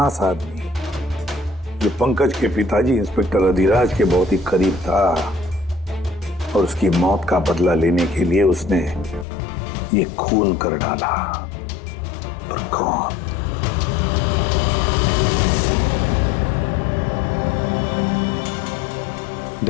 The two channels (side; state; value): right; drops out; at 9.2 s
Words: आदमी जो पंकज के पिताजी इंस्पेक्टर अधिराज के बहुत ही करीब था और उसकी मौत का बदला लेने के लिए उसने ये खून कर डाला। पर कौन?